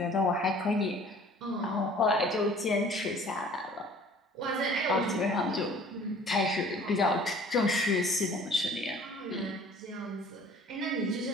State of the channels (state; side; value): normal; both; correlation 0.50